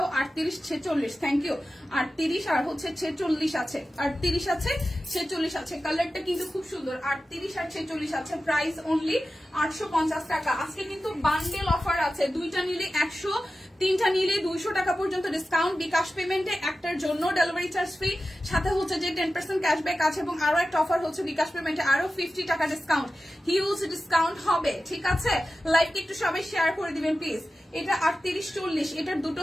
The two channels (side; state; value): both; normal; correlation 0.94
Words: 38, 46, থ্যাংক ইউ। 38 আর হচ্ছে 46 আছে, 38 আছে, 46 আছে। কালারটা কিন্তু খুব সুন্দর। 38 আর 46 আছে। প্রাইস অনলি 850 টাকা। আজকে কিন্তু বান্ডেল অফার আছে, দুইটা নিলে 100, তিনটা নিলে 200 টাকা পর্যন্ত ডিসকাউন্ট। বিকাশ পেমেন্টে একটার জন্য ডেলিভারি চার্জ ফ্রি, সাথে হচ্ছে যে 10% ক্যাশব্যাক আছে এবং আরো একটা অফার হচ্ছে বিকাশ পেমেন্টে আরো 50 টাকা ডিসকাউন্ট, হিউজ ডিসকাউন্ট হবে। ঠিক আছে, লাইভকে একটু সবাই শেয়ার করে দিবেন প্লিজ। এটা 38, 40, এটার দুটো